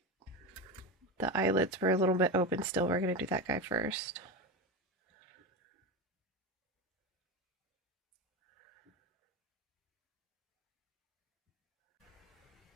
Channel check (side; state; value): both; normal; correlation 0.20